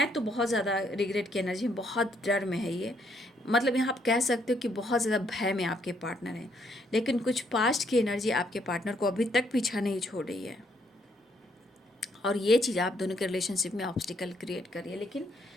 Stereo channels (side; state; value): both; normal; correlation 0.71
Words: तो बहुत ज़्यादा रिग्रेट की एनर्जी, बहुत डर में है ये। मतलब यहाँ आप कह सकते हो कि बहुत ज़्यादा भय में आपके पार्टनर हैं, लेकिन कुछ पास्ट की एनर्जी आपके पार्टनर को अभी तक पीछा नहीं छोड़ रही है और ये चीज़ आप दोनों के रिलेशनशिप में ऑब्स्टिकल क्रिएट कर रही है। लेकिन